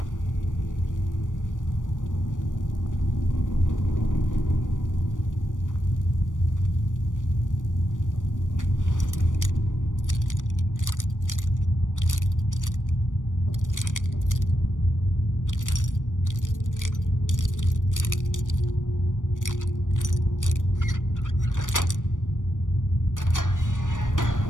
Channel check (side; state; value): right; late; 0.87 ms